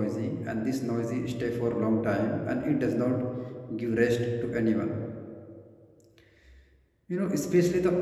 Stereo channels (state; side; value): identical; both; correlation 1.00